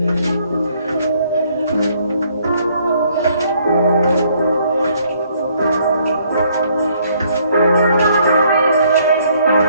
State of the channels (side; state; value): both; inverted; correlation -0.66